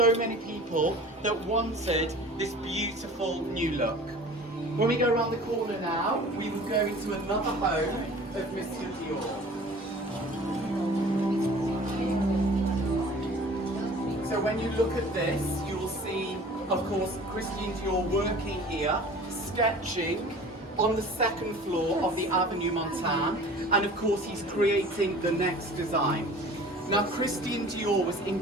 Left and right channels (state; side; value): normal; both; correlation 0.44